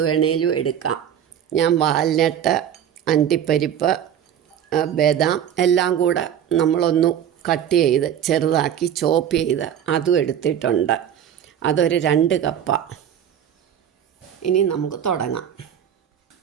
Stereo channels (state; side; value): quieter; left; 9.5 dB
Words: വേണേലും എടുക്കാം. ഞാൻ വാൽനട്ട്, അണ്ടിപ്പരിപ്പ്, ബദാം എല്ലാം കൂടെ നമ്മളൊന്ന് കട്ട് ചെയ്ത് ചെറുതാക്കി ചോപ്പ് ചെയ്ത് അതും എടുത്തിട്ടുണ്ട്. അതൊരു 2 കപ്പാണ്. ഇനി നമുക്ക് തുടങ്ങാം.